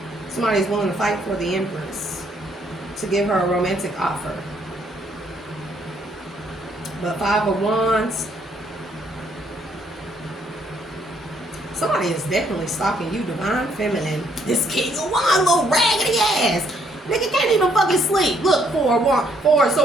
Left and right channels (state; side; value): normal; both; correlation 0.69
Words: Somebody's willing to fight for the Empress to give her a romantic offer. But 5 of Wands. Somebody is definitely stalking you, divine feminine. This King of Wands, little raggedy ass. Nigga can't even fucking sleep. Look, 4 of